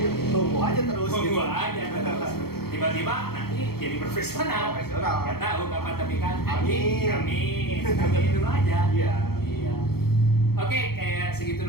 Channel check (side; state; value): right; late; 0.95 ms